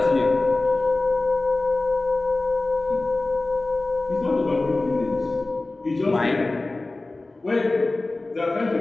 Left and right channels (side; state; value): right; quieter; 3.1 dB